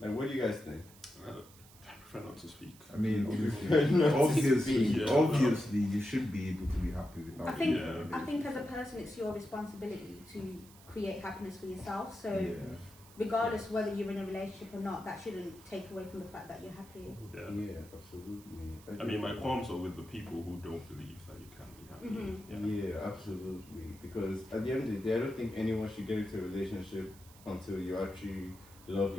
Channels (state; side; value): noise; right; hiss, 22 dB below the sound